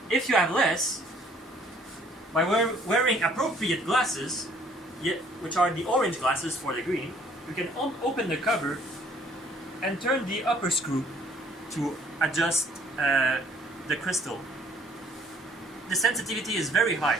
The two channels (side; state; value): both; normal; correlation 0.59